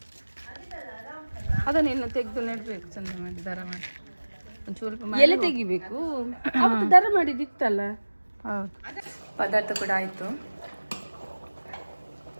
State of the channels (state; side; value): inverted; both; correlation -1.00